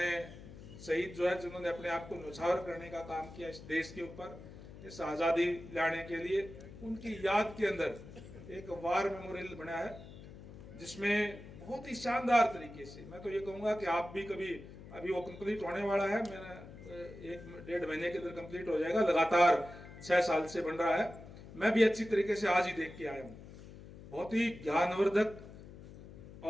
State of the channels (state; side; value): noise; left; hum, 16 dB below the sound